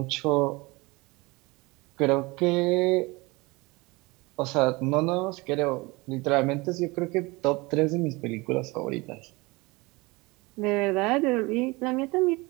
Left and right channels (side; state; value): left; quieter; 24.1 dB